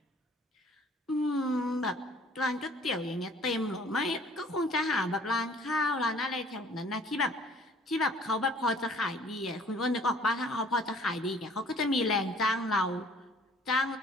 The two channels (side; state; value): both; normal; correlation 0.54